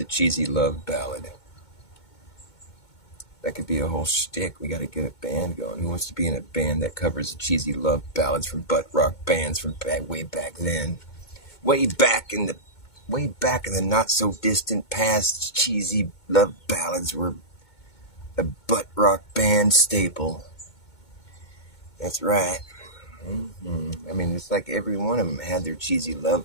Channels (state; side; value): late; right; 2.2 ms